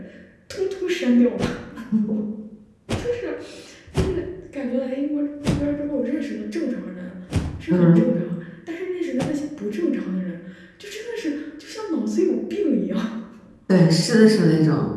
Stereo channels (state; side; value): identical; both; correlation 1.00